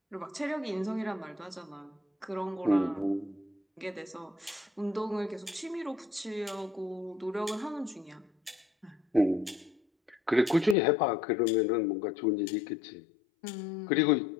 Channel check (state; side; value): drops out; right; at 10.8 s